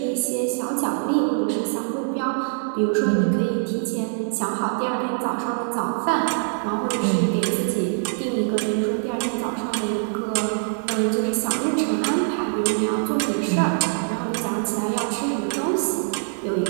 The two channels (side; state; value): left; silent; 58 dB below the other